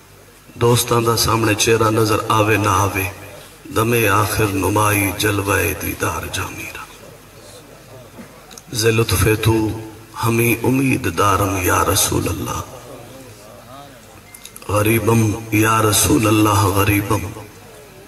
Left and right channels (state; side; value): identical; both; correlation 1.00